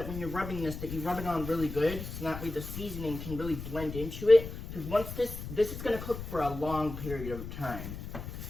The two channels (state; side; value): noise; left; rumble, 9 dB below the sound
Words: when you're rubbing this, that you rub it on really good, so that way the seasoning can really blend into it. Because once this is going to cook for a long period of time.